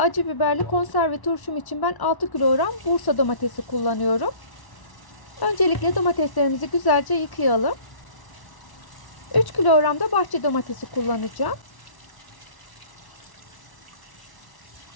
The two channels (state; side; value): late; right; 1.1 ms